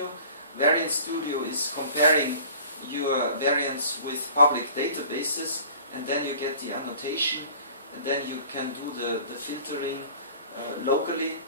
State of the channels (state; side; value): inverted; both; correlation -0.46